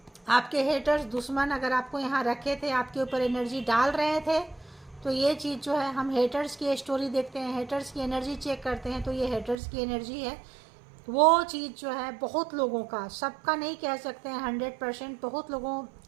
आपके हेटर्स, दुश्मन अगर आपको यहाँ रखे थे, आपके ऊपर एनर्जी डाल रहे थे, तो ये चीज़ जो है, हम हेटर्स की स्टोरी देखते हैं, हेटर्स की एनर्जी चेक करते हैं, तो ये हेटर्स की एनर्जी है। वो चीज़ जो है बहुत लोगों का, सबका नहीं कह सकते हैं 100%, बहुत लोगों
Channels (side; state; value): left; drops out; at 9.6 s